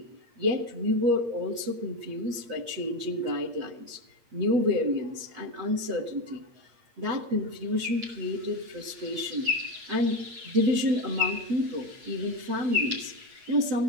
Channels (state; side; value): late; left; 8.4 ms